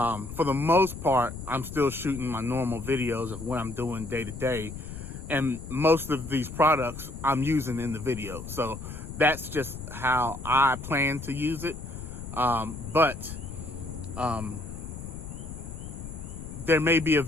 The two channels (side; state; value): left; noise; rumble, 10 dB below the sound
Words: the most part, I'm still shooting my normal videos of what I'm doing day to day, and most of these products I'm using in the video. So that's just how I plan to use it. But there may be a